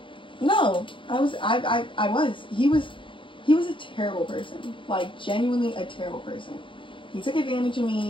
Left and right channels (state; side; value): late; right; 0.25 ms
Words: No, I was. He was a terrible person. Like, genuinely a terrible person. He took advantage of